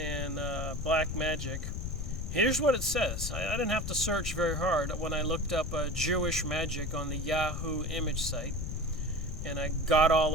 Black Magic. Here's what it says. I didn't have to search very hard when I looked up Jewish Magic on the Yahoo image site, and I got all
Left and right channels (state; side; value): noise; left; rumble, 4 dB below the sound